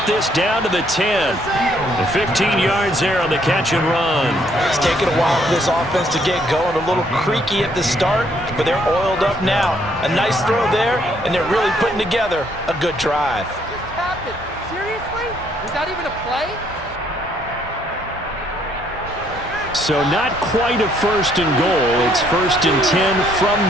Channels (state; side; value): normal; both; correlation 0.68